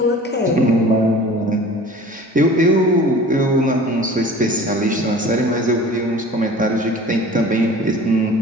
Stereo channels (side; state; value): both; normal; correlation 0.43